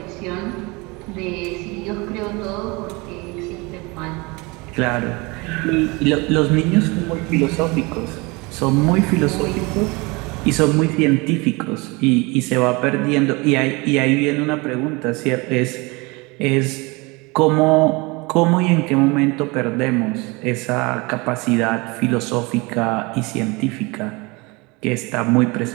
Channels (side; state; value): left; quieter; 26.0 dB